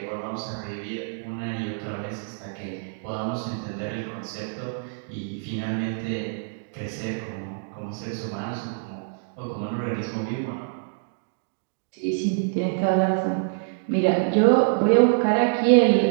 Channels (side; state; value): left; silent; digital silence